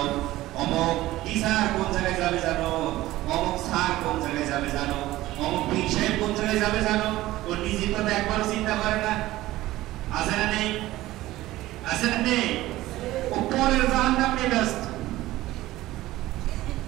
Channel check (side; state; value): left; quieter; 16.6 dB